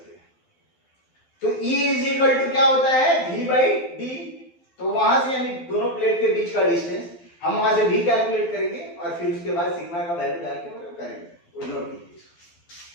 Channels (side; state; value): right; late; 12 ms